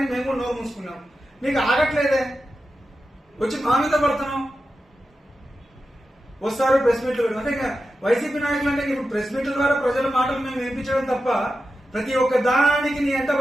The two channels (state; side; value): normal; both; correlation 0.91